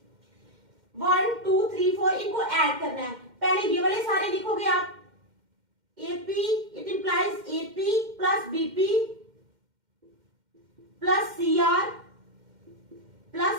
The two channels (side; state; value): left; late; 2.1 ms